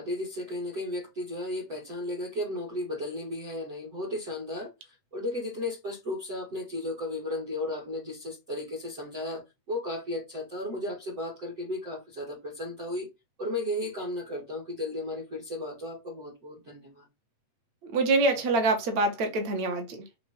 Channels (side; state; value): left; late; 8.7 ms